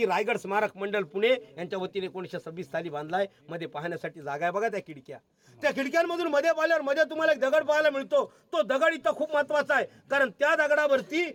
रायगड स्मारक मंडळ पुणे यांच्या वतीने 1926 साली बांधलाय. मध्ये पाहण्यासाठी जागा आहे बघा, त्या खिडक्यांमधून मध्ये पाहिल्यावर मध्ये तुम्हाला एक दगड पाहायला मिळतो. तो दगड इथं खूप महत्वाचा आहे, कारण त्या दगडावरती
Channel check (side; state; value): both; identical; correlation 1.00